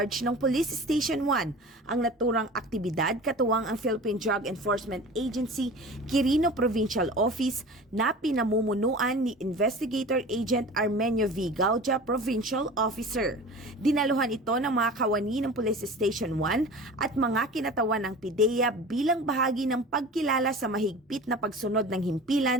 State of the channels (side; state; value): both; normal; correlation 0.37